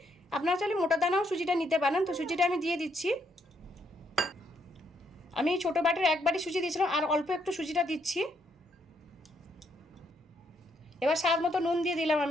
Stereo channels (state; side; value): normal; both; correlation 0.74